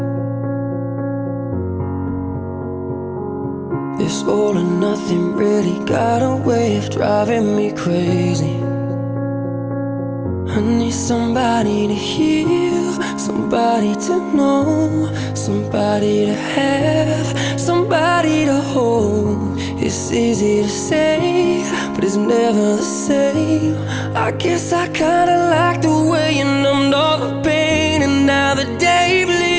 This all or nothing really got a way of driving me crazy. I need somebody to heal, somebody to know, somebody to have, somebody to hold. It's easy to say, but it's never the same. I guess I kinda like the way you numbed all the pain, and now the day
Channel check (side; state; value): both; identical; correlation 1.00